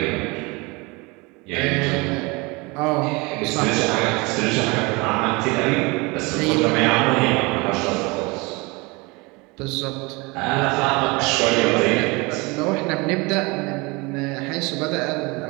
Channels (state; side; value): quieter; left; 25.9 dB